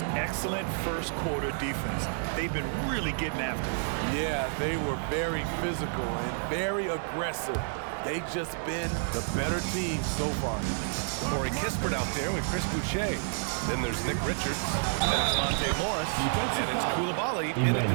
excellent first quarter defense. They've been really getting after it. Yeah, they were very physical and very aggressive. They've just been the better team so far. Corey Kispert out there with Chris Boucher. Then there's Nick Richards, then it's Monte Morris, and it's Coulibaly in at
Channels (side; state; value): left; silent; digital silence